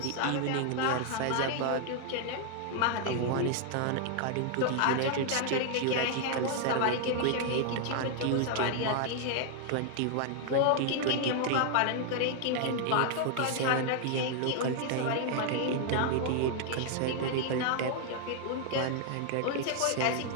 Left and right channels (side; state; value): both; different; correlation 0.00